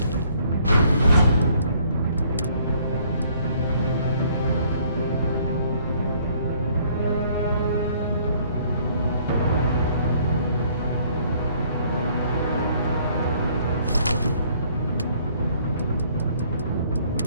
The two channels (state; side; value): inverted; both; correlation -0.62